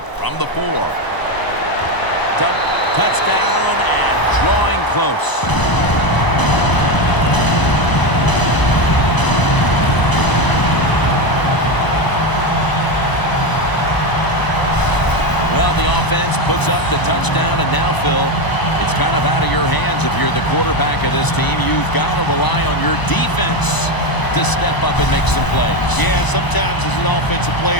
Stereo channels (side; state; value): right; late; 1.0 ms